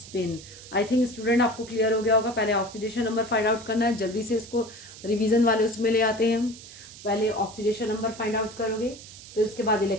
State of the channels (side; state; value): right; noise; hiss, 17 dB below the sound